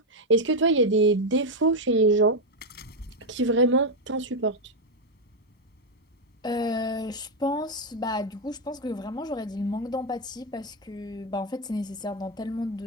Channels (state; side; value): normal; both; correlation 0.04